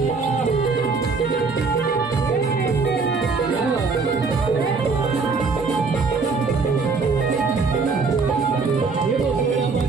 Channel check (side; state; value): left; quieter; 4.5 dB